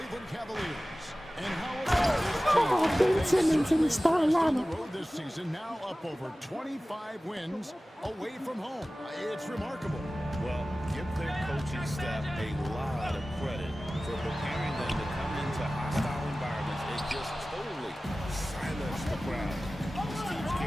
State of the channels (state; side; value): normal; both; correlation 0.97